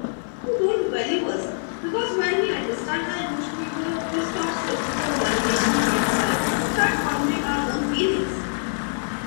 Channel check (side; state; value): right; silent; 63 dB below the other